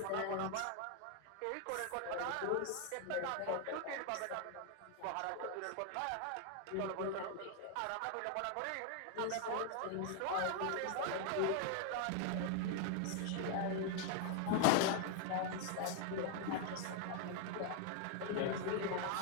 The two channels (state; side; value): different; both; correlation 0.00